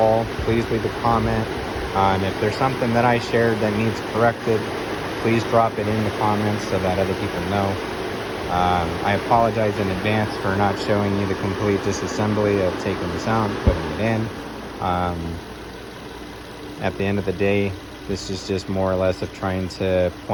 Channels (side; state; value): both; identical; correlation 1.00